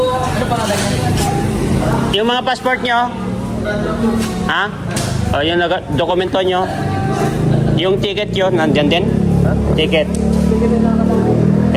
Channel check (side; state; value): both; identical; correlation 1.00